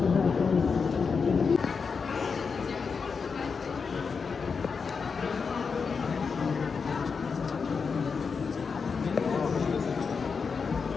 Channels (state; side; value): quieter; right; 5.4 dB